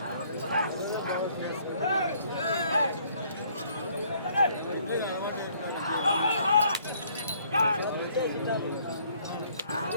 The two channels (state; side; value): inverted; both; correlation -0.63